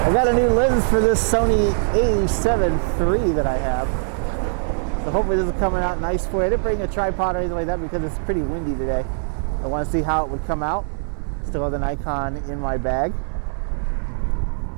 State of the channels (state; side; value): silent; left; 61 dB below the other